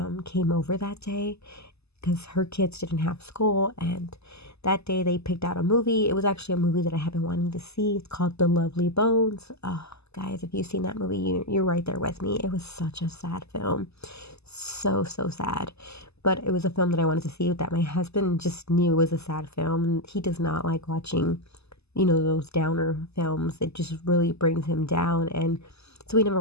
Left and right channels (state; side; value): late; right; 0.79 ms